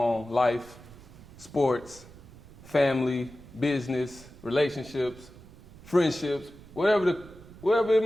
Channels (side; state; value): right; noise; rumble, 20 dB below the sound